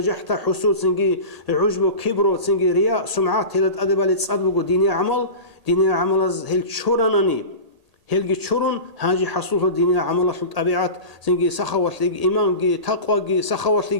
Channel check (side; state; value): left; late; 1.8 ms